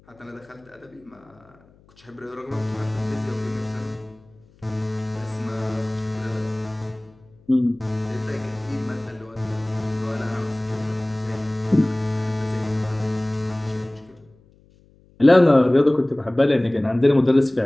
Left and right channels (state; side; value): noise; left; hum, 29 dB below the sound